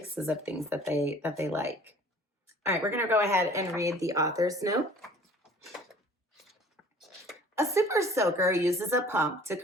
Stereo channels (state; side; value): normal; both; correlation 0.50